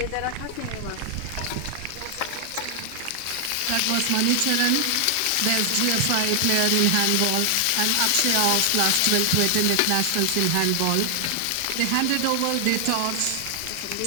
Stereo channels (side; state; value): both; different; correlation 0.00